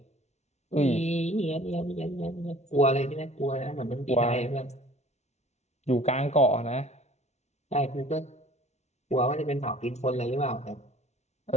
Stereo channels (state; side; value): late; right; 0.32 ms